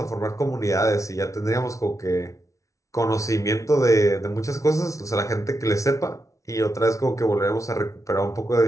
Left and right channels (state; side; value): late; right; 0.15 ms